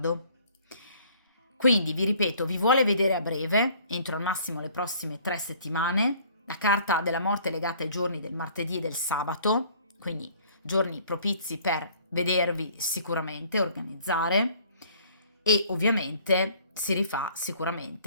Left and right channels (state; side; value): inverted; both; correlation -0.55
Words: Quindi vi ripeto, vi vuole vedere a breve, entro al massimo le prossime 3 settimane. La carta della morte è legata ai giorni del martedì e del sabato, quindi giorni propizi per vedervi sicuramente, organizzare, e ovviamente si rifà